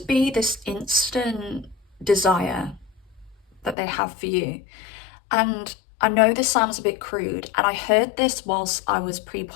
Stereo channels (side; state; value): right; drops out; at 3.8 s